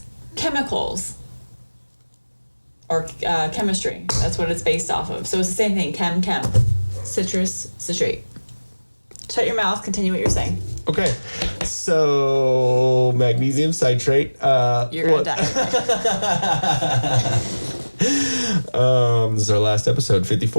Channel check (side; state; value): both; inverted; correlation -1.00